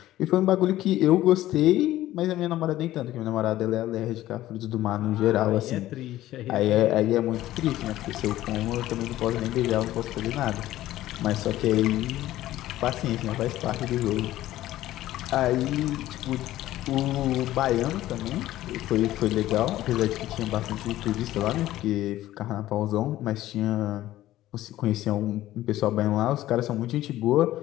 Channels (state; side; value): quieter; right; 14.8 dB